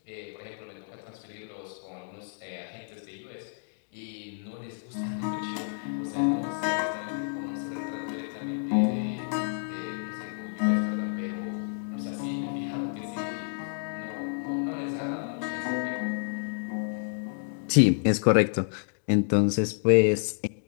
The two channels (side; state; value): right; silent; digital silence